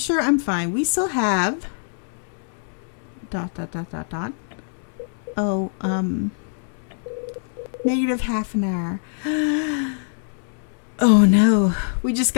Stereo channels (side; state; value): right; silent; digital silence